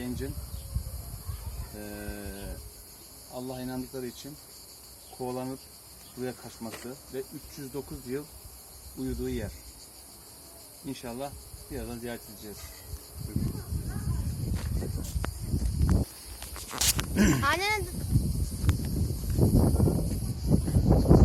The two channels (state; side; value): identical; both; correlation 1.00